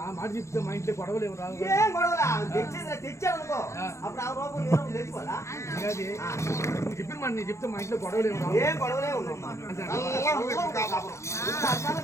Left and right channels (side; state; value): right; late; 0.14 ms